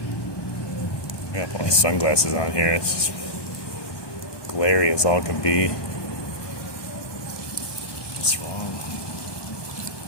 Yeah, put my sunglasses on here. It's just glary as all can be. What's wrong?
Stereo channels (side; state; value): right; late; 1.2 ms